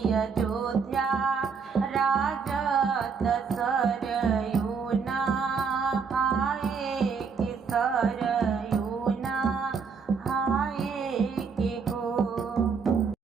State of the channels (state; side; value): quieter; left; 5.6 dB